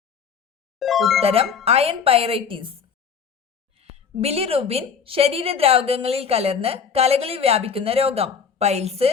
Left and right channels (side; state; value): right; quieter; 6.5 dB